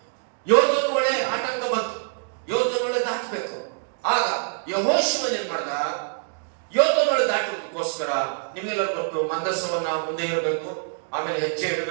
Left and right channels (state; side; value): silent; left; 62 dB below the other